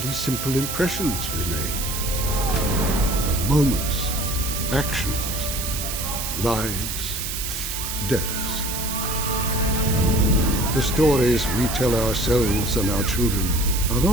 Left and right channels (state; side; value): noise; right; hiss, 4 dB below the sound